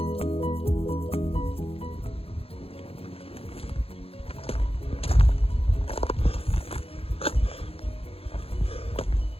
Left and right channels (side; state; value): right; late; 0.28 ms